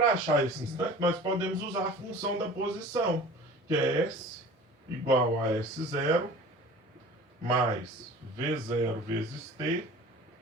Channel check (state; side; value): normal; both; correlation 0.42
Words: achar esse instante, nós podemos usar a função da posição, que é S igual a S0 mais V0 vezes T